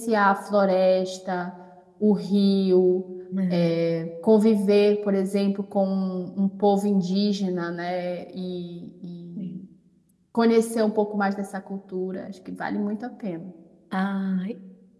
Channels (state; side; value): identical; both; correlation 1.00